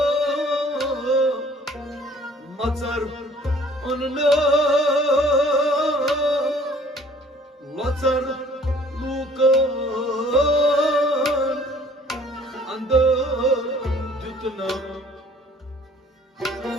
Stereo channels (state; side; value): normal; both; correlation 0.54